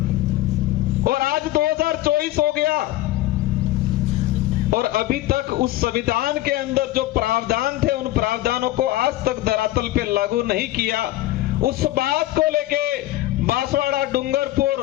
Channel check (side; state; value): right; quieter; 15.8 dB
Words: और आज 2024 हो गया और अभी तक उस संविधान के अंदर जो प्रावधान थे, उन प्रावधानों को आज तक धरातल पे लागू नहीं किया। उस बात को लेके बांसवाड़ा, डूंगरपुर